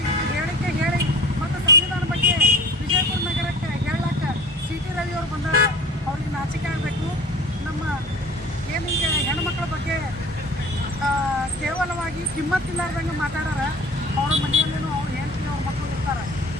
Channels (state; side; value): normal; both; correlation 0.43